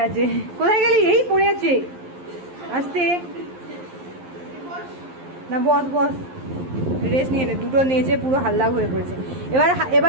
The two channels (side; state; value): left; late; 11 ms